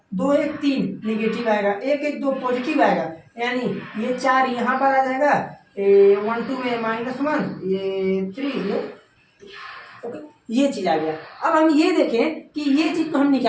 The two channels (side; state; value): both; identical; correlation 1.00